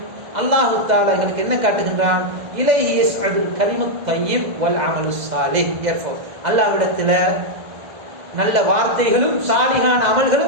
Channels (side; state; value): left; late; 2.0 ms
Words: அல்லாஹ் தஆலா எங்களுக்கு என்ன காட்டுகின்றான்? இலைஹி யஸ்அதுல் கலிமுத் தய்யிப் வல் அமலுஸ் ஸாலிஹ் யர்ஃபு, அல்லாஹ்விடத்திலே நல்ல வார்த்தைகளும் சாலிகான